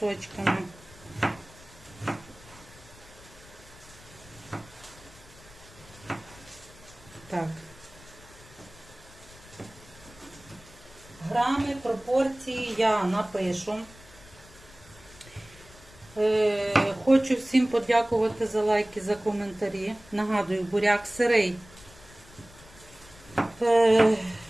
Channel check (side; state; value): left; noise; rumble, 22 dB below the sound